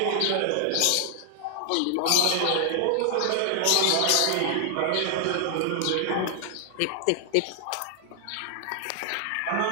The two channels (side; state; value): both; different; correlation 0.00